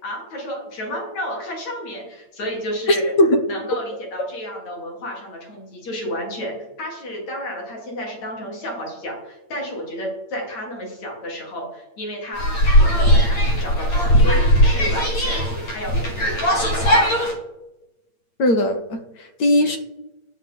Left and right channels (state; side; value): late; right; 8.7 ms